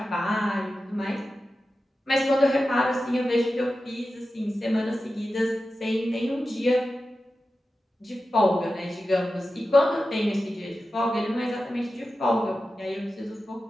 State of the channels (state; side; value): normal; both; correlation 0.93